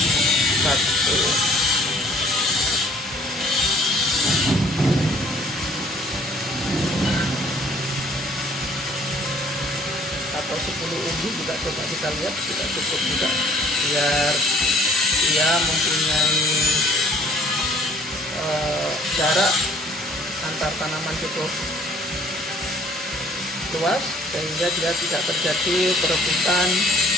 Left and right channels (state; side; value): normal; both; correlation 0.57